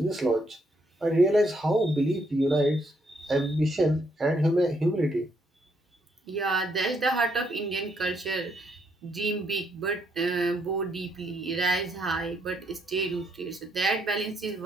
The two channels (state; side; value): normal; both; correlation 0.73